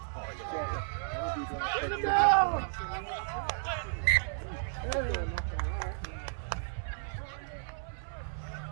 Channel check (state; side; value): silent; left; 56 dB below the other